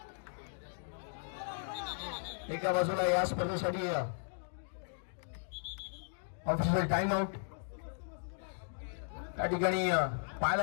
एका बाजूला या स्पर्धेसाठी ऑफिशियल टाइम आउट त्या ठिकाणी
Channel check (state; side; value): silent; right; digital silence